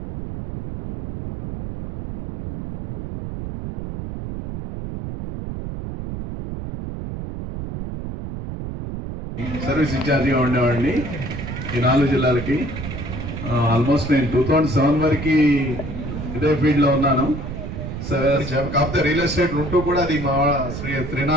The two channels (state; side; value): noise; right; rumble, 7 dB below the sound